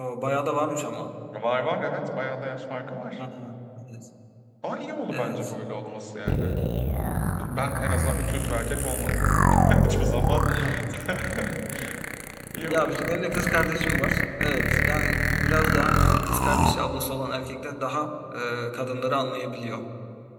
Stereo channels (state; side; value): identical; both; correlation 1.00